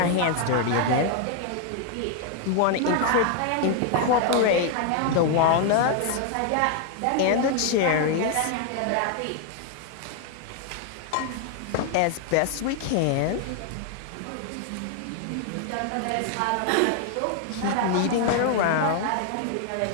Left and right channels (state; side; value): different; both; correlation 0.00